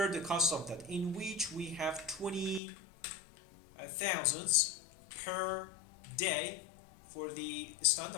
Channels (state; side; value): drops out; right; at 2.6 s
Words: the cost of that, in which we have 20,000 per day for the